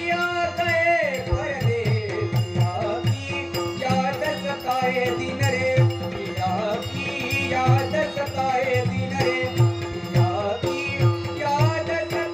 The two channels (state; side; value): identical; both; correlation 1.00